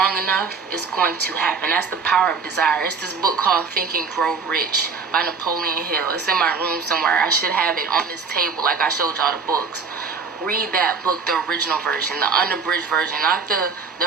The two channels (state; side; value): quieter; left; 5.1 dB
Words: enough, it's going to happen. That's the power of desire. It's this book called Think and Grow Rich by Napoleon Hill. It's in my room somewhere. I should have it on this table like I showed y'all the books. Read that book, the original version, the unabridged version, not the